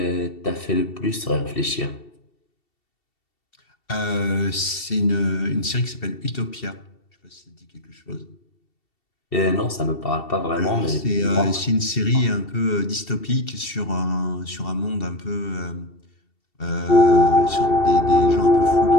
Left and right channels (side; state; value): right; late; 2.7 ms